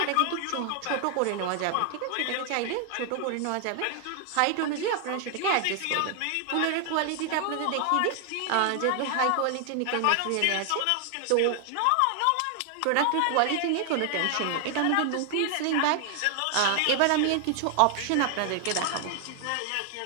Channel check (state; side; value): different; both; correlation 0.00